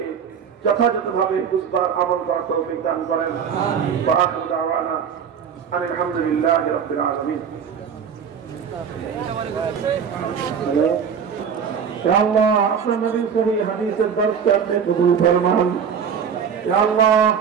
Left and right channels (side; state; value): left; quieter; 7.2 dB